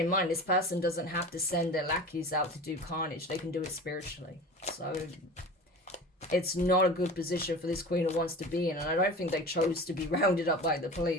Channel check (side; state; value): both; normal; correlation 0.35